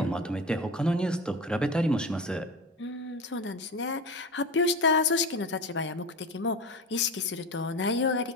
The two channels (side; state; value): both; normal; correlation 0.27